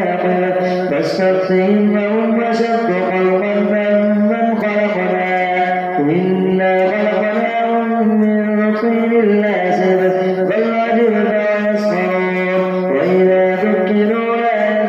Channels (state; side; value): identical; both; correlation 1.00